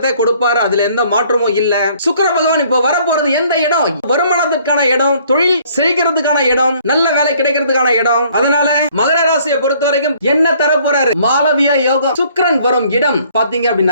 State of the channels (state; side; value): inverted; both; correlation -0.60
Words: கொடுப்பாரு. அதுல எந்த மாற்றமும் இல்ல. சுக்கிர பகவான் இப்போ வரப்போறது எந்த இடம்? வருமானத்துக்கான இடம், தொழில் செழிக்கிறதுக்கான இடம், நல்ல வேலை கிடைக்கிறதுக்கான இடம். அதனால மகர ராசியை பொறுத்த வரைக்கும் என்ன தர போறாரு? மாளவியா யோகம். சுக்கிரன் வரும் இடம் பாத்தீங்க